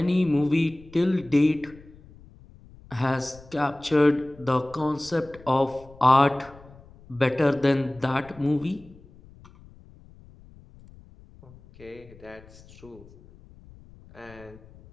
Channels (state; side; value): noise; left; rumble, 23 dB below the sound